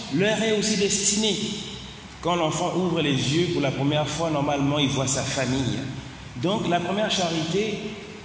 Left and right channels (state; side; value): identical; both; correlation 1.00